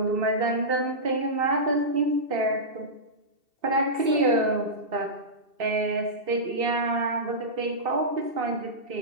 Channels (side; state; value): left; late; 2.7 ms